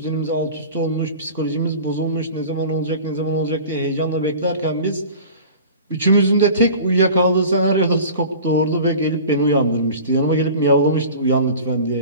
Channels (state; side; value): inverted; both; correlation -0.39